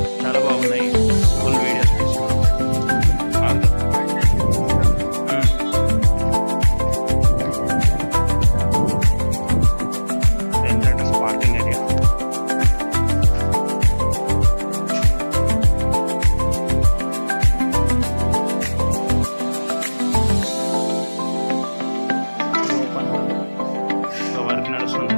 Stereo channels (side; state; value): both; inverted; correlation -1.00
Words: చాలా బాగున్నాయి. ఫుల్ వీడియోస్ తీసుకున్నాం. Parking area. వర్క్ నడుస్తుంది